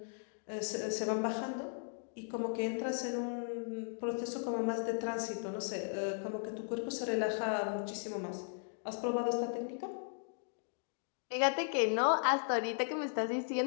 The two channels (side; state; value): right; silent; digital silence